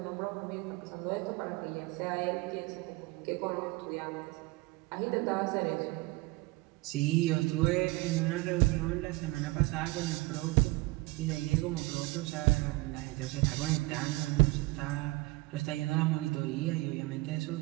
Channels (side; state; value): left; quieter; 22.1 dB